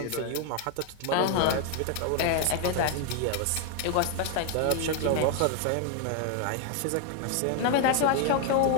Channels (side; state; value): both; different; correlation 0.00